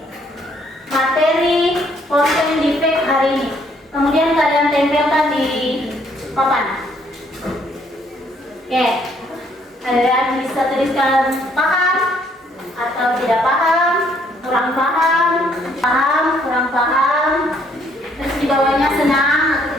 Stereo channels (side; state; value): both; normal; correlation 0.66